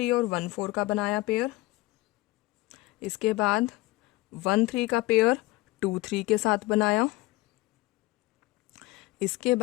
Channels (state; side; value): quieter; right; 19.8 dB